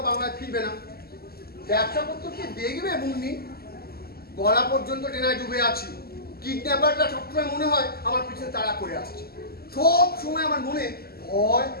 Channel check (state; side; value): late; right; 0.45 ms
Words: বাংলায় ফিরবে না। ব্যবসা পত্র কি দেখবে মুন্নি? গলা পর্যন্ত টেনায় ডুবে আছি। কিডন্যাপাররা সবসময় মনে হয় আমার পিছনে তাড়া করে আসছে। সব সময় আমার মনে ভয়